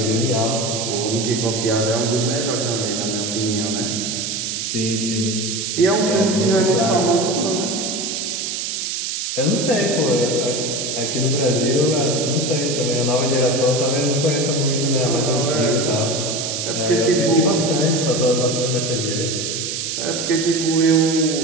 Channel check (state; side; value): noise; right; hiss, 3 dB below the sound